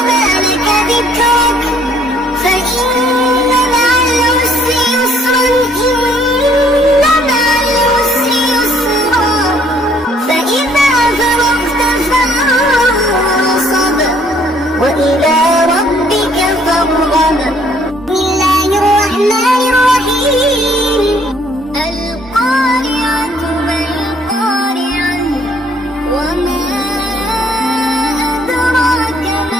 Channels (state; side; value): normal; both; correlation 0.63